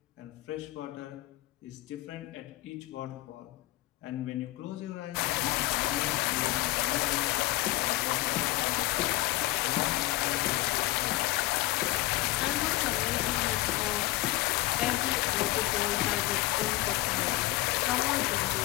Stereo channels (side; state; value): right; quieter; 17.8 dB